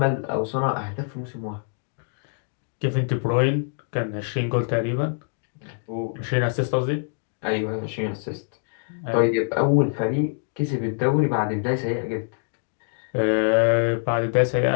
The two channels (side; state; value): right; silent; digital silence